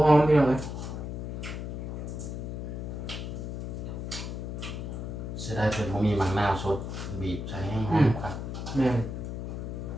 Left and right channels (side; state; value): left; noise; hum, 5 dB below the sound